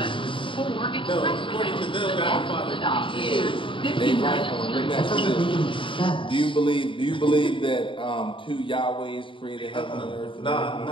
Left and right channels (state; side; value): late; right; 0.25 ms